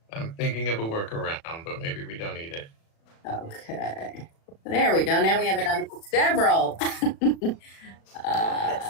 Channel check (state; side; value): late; right; 36 ms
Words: I'm thinking of a workaround, but maybe we don't need it. Okay. There we go. Now we have it on several.